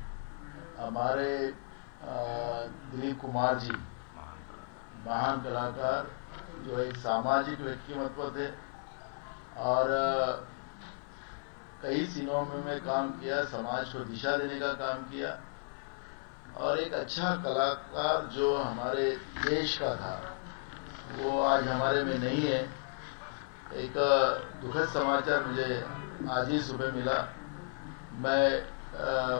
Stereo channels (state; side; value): silent; right; 55 dB below the other